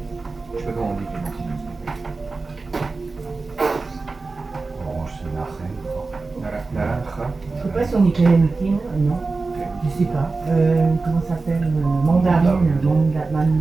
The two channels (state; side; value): quieter; left; 3.8 dB